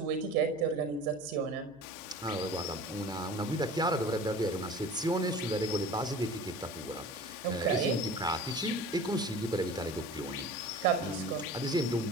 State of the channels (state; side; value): noise; right; hum, 28 dB below the sound